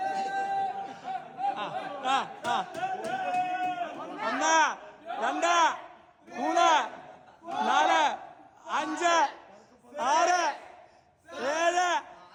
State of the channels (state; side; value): identical; both; correlation 1.00